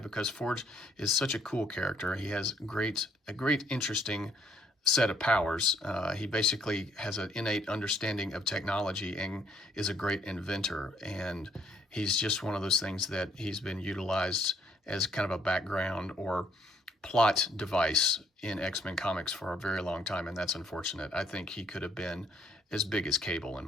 because Forge is such a cool character. He has a great, interesting set of powers. He basically has an innate understanding of technology and is a great inventor. And he's just one of those things that he's been utilized as kind of a background or plot device in X-Men comics for a very long time, and that's unfortunate. I think he could have been as big as Cable, in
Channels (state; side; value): normal; both; correlation 0.66